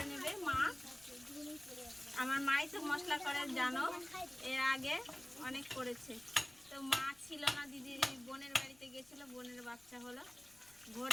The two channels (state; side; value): noise; left; rumble, 27 dB below the sound